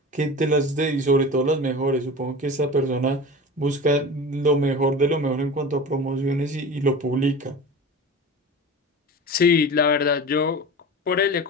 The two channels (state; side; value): normal; both; correlation 0.33